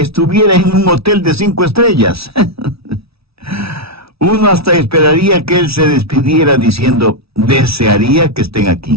en un hotel de 5 estrellas. Uno hasta esperaría que él se despidiera diciendo, desearía que estén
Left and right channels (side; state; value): left; late; 0.77 ms